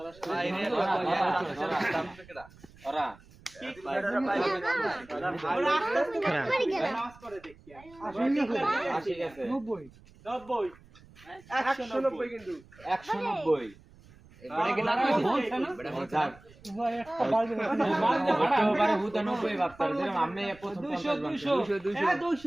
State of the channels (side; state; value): right; noise; rumble, 24 dB below the sound